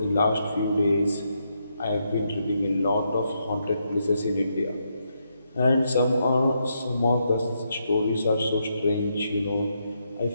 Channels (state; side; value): inverted; both; correlation -0.79